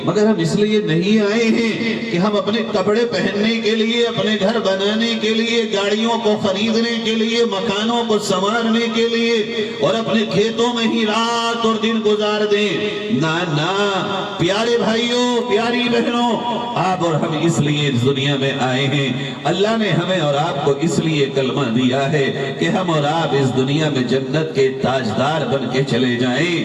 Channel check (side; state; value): both; identical; correlation 1.00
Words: مگر ہم اس لیے نہیں آئے ہیں کہ ہم اپنے کپڑے پہننے کے لیے، اپنے گھر بنانے کے لیے، گاڑیوں کو خریدنے کے لیے، مکانوں کو سنوارنے کے لیے اور اپنے کھیتوں میں ہی رات اور دن گزار دیں۔ نہ نہ پیارے بھائیوں، پیاری بہنوں، آپ اور ہم اس لیے اس دنیا میں آئے ہیں۔ اللہ نے ہمیں اور آپ کو اس لیے کلمہ دیا ہے کہ ہم اور آپ اس دنیا میں جنت کے تاجدار بن کے چلے جائیں،